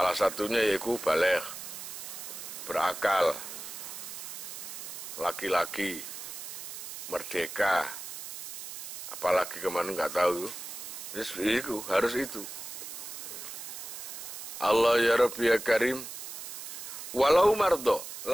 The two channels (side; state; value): right; noise; hiss, 9 dB below the sound